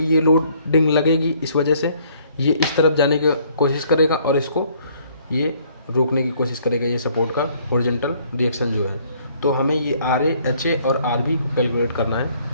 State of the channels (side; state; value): both; inverted; correlation -0.62